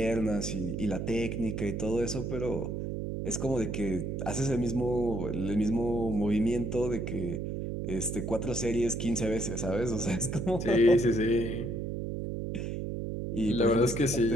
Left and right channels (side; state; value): right; noise; hum, 3 dB below the sound